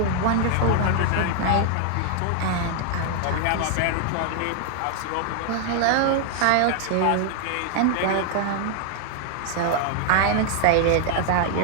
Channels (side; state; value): both; different; correlation 0.00